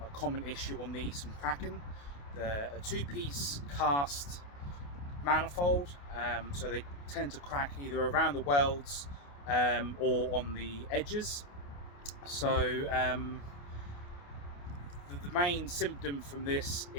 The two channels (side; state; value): right; late; 28 ms